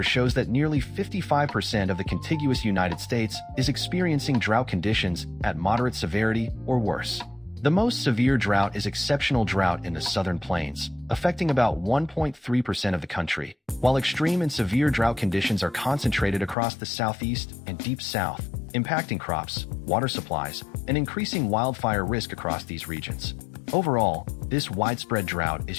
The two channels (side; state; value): right; drops out; at 16.6 s